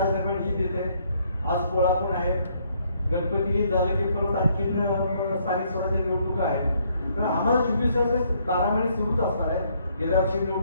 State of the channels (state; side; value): inverted; both; correlation -0.69